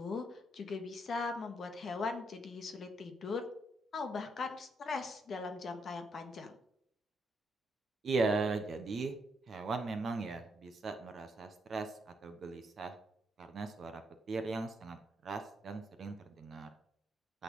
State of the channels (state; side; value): normal; both; correlation 0.77